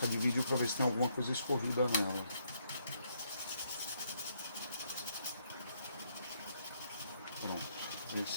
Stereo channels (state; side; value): inverted; both; correlation -0.74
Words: de vídeo para ver se tem alguma coisa escorrida nela. Pronto.